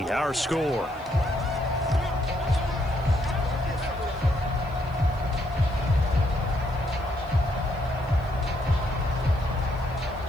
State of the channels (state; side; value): noise; left; hiss, 29 dB below the sound